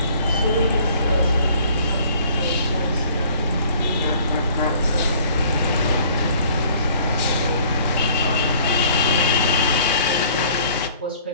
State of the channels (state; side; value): inverted; both; correlation -0.56